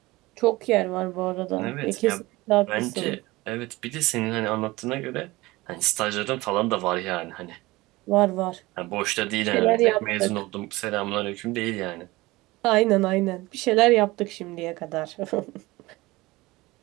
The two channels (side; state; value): left; quieter; 20.5 dB